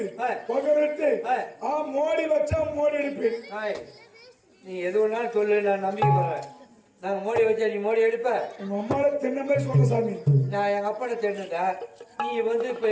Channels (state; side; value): identical; both; correlation 1.00